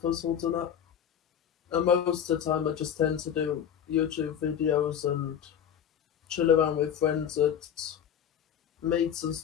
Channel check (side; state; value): right; quieter; 8.9 dB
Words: and that. And most of the time, I just tend to do YouTube videos and chill around with friends at meets and